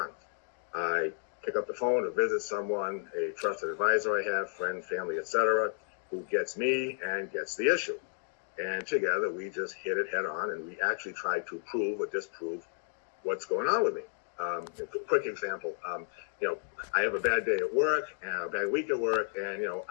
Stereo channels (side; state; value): right; silent; digital silence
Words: I pick up the phone to visit someone, a trusted advisor I have, friend, family, etc., who gets me and gets the issue. And together we just hit it head on, and we actually try to prove or disprove what's going on with me. A quick example, I have a bad day at work, and a bad week at work, and,